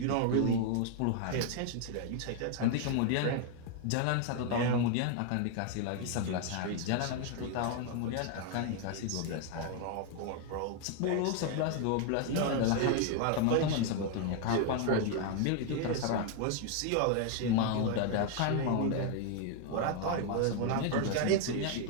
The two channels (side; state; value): both; different; correlation 0.00